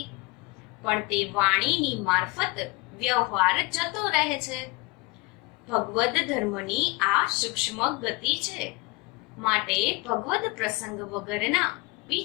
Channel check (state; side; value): quieter; right; 24.4 dB